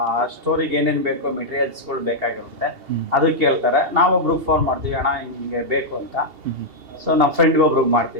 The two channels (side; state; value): left; late; 2.8 ms